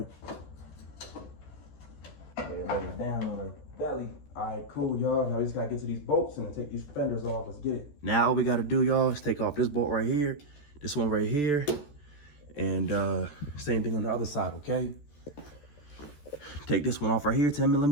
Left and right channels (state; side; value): late; right; 14 ms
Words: And lay it down on the belly. All right, cool, y'all. Now we just gotta get to these bolts and then take these fenders off. Let's get it. Now all we gotta do, y'all, is take off this bolt right here, this one right here, and same thing on the other side, okay? Take this one off right here,